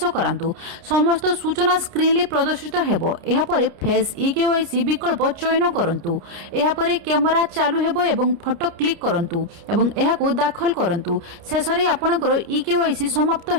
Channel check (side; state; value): left; late; 29 ms